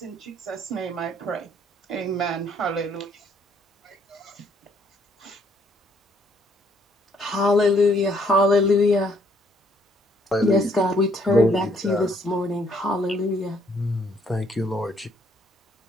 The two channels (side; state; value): both; normal; correlation 0.67